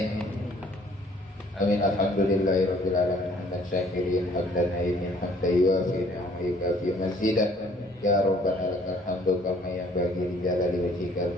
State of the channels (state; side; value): normal; both; correlation 0.58